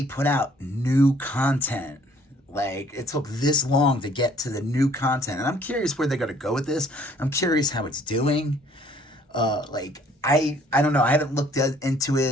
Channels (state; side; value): normal; both; correlation 0.59